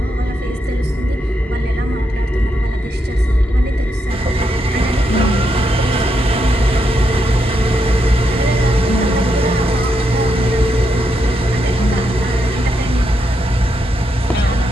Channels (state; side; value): normal; both; correlation 0.81